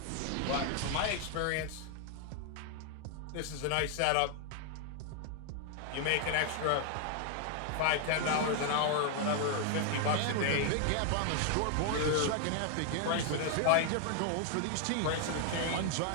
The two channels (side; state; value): both; different; correlation 0.00